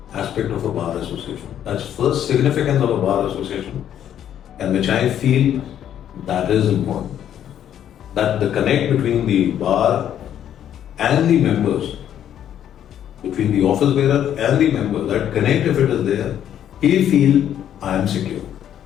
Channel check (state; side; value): quieter; right; 10.2 dB